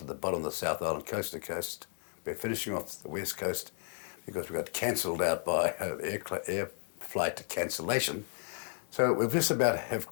the bottom of the South Island, coast to coast. We're finishing off the West Coast because we got cancelled out by air flight cancellation. So we've just about have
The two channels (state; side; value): silent; right; digital silence